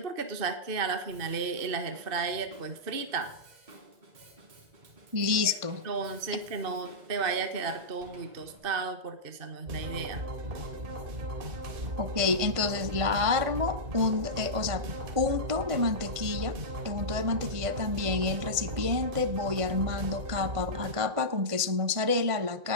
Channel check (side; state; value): left; late; 1.5 ms